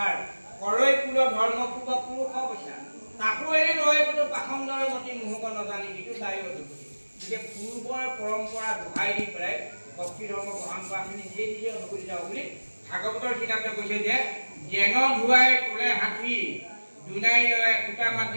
কৰৈ কুল ধৰ্ম পূৰ্ব পুৰুষ অৱস্থা তাকো এৰি ৰয় কোনো পাখণ্ডৰ মতি মুহূৰ্ত নাজানি সেইটো দায়ী গতিকে পূৰ্বৰ পৰম্পৰা দোহাই দি পেলাই ভক্তি ধৰ্ম গ্ৰহণ কৰা আমি নিজে নিজে অনুভূতি যাওঁ বুলি ভাগৱতৰ কিতাপতে কৈছে যে জেন ধুৱাই তোলে হাতী দুনাই লয় কুটা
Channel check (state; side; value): inverted; both; correlation -1.00